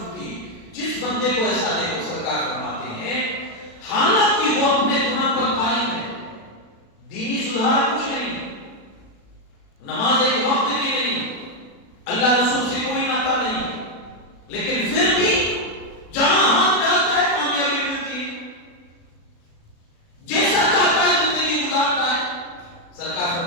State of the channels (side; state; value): right; late; 36 ms